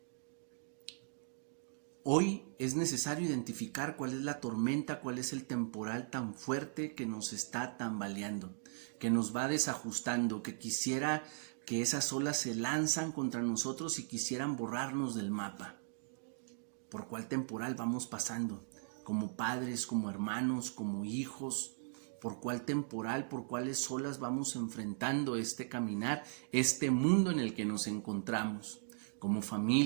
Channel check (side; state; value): left; silent; digital silence